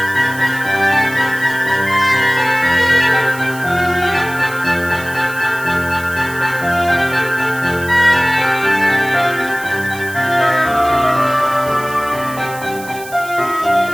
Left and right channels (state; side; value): noise; right; hiss, 16 dB below the sound